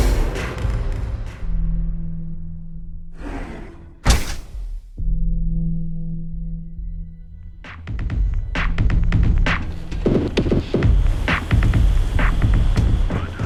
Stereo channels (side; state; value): both; identical; correlation 1.00